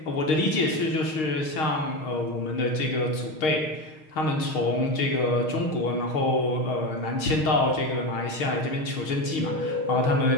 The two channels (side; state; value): right; late; 6.4 ms